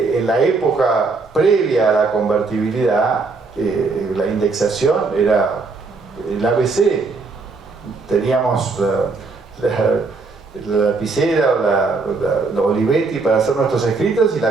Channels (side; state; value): left; quieter; 4.1 dB